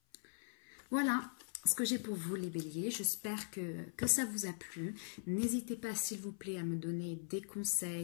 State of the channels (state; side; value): silent; right; 50 dB below the other